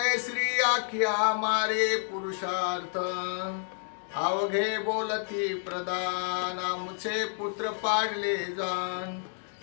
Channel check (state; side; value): silent; right; digital silence